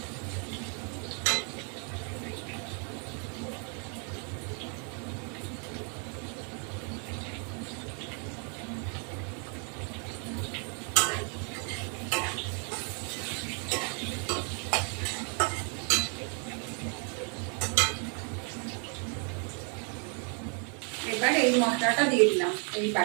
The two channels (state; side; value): quieter; left; 39.1 dB